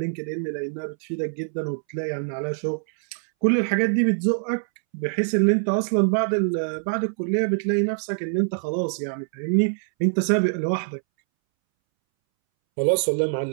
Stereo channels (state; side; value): silent; left; 62 dB below the other